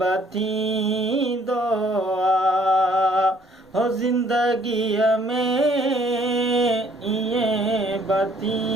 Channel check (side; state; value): both; normal; correlation 0.62